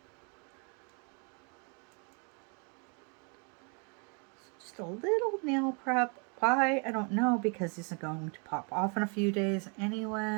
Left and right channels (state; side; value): quieter; left; 36.1 dB